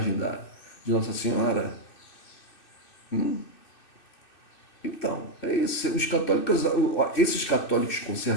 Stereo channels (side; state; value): right; late; 2.6 ms